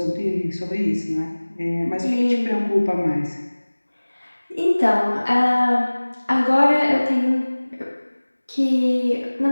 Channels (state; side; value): inverted; both; correlation -1.00